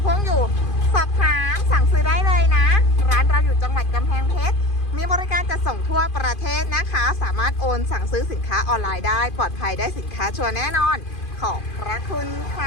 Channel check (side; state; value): right; late; 2.5 ms